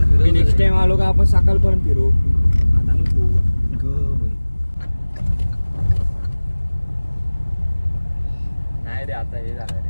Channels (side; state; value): both; inverted; correlation -1.00